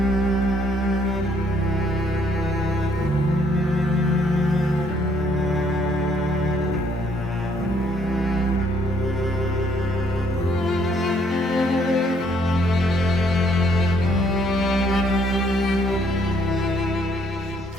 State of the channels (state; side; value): normal; both; correlation 0.67